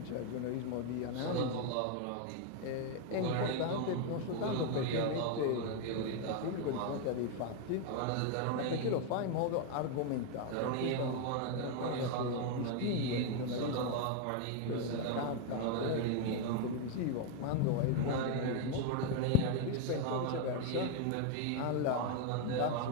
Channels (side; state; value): both; different; correlation 0.01